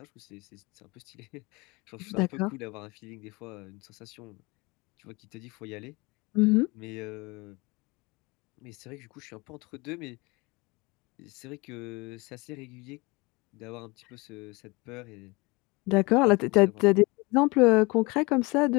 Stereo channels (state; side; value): quieter; right; 25.5 dB